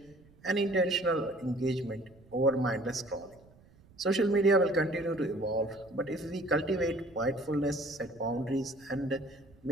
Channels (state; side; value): noise; right; rumble, 27 dB below the sound